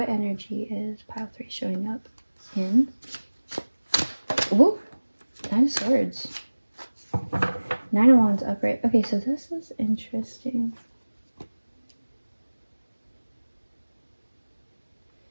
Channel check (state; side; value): inverted; both; correlation -1.00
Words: energy is pile 3 showing up in? Ooh, 9 of Swords. 9 of Wands upright. Okay, so this is interesting.